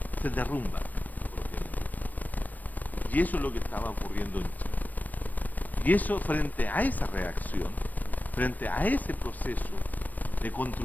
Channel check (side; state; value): right; late; 0.084 ms